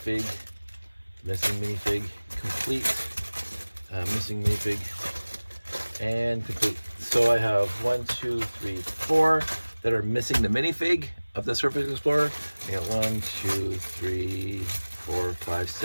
Missing minifig, and complete. So I have 1, 2, 3, 4 that are missing the minifig of the Surface Explorer. I got 1, 2, 3, 4, 5,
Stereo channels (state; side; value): inverted; both; correlation -1.00